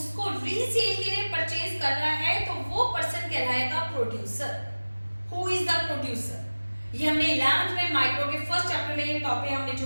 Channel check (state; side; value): inverted; both; correlation -1.00